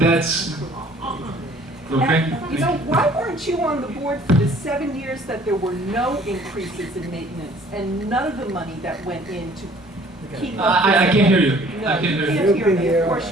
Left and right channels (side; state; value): both; normal; correlation 0.55